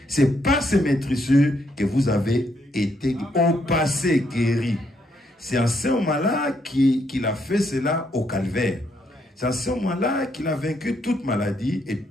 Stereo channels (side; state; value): both; normal; correlation 0.74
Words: C'est par ces maîtrisures que vous avez été au passé guéri. C'est en ce moment-là qu'il a fait cela au calvaire. C'est en ce moment-là qu'il a vaincu toute maladie et